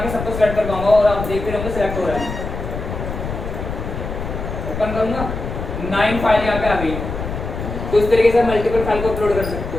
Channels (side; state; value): left; noise; rumble, 6 dB below the sound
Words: सबको सेलेक्ट कर पाऊंगा और आप देखते रहोगे सेलेक्ट हो रहा है। ओपन करूंगा, 9 फाइल यहाँ पे आ गई। तो इस तरीके से मल्टीपल फाइल को अपलोड कर सकते